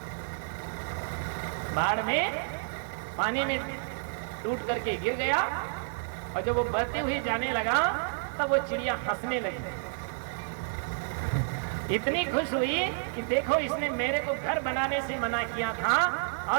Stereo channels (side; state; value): left; silent; digital silence